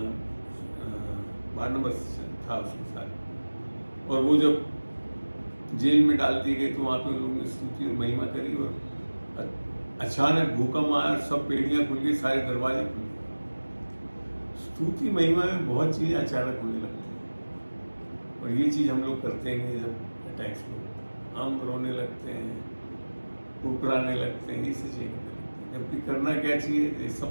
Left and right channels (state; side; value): inverted; both; correlation -1.00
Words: बारनबास था उसके साथ, और वो जब जेल में डाल दी गई तो वहां पे उन लोगों ने स्तुति और महिमा करी, और अचानक भूकंप आया, सब पेड़ियां खुल गई, सारे दरवाजे खुल गए। स्तुति महिमा में बहुत चीजें अचानक होने लगती हैं, और ये चीज हम लोग करते हैं जब अटैक्स में हम रोने लगते हैं, कुकराने लगते हैं, ये चीजें करते हैं। जबकि करना क्या चाहिए, ये